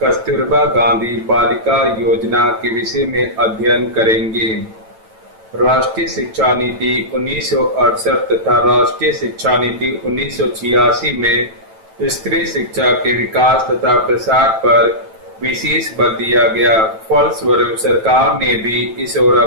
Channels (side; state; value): left; late; 9.1 ms